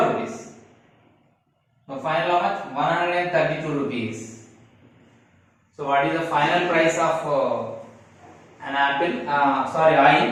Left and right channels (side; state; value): both; identical; correlation 1.00